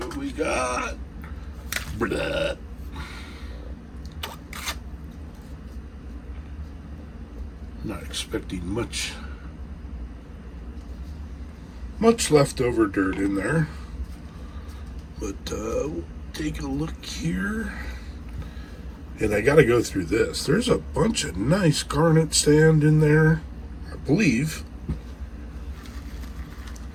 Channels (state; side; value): identical; both; correlation 1.00